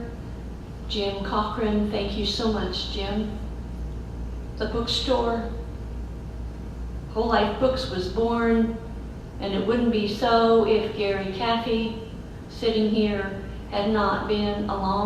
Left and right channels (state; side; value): identical; both; correlation 1.00